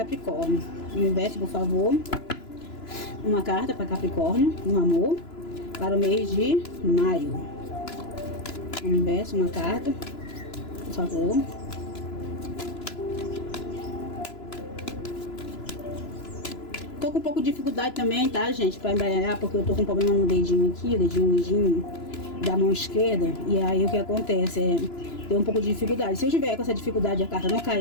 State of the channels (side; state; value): right; late; 2.9 ms